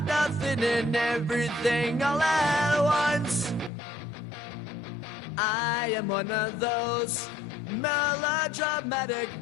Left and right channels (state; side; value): drops out; right; at 3.7 s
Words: nothing and everything all at once? I am one of those melodramatic